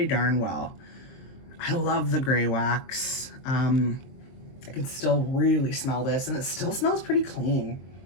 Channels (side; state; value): right; late; 23 ms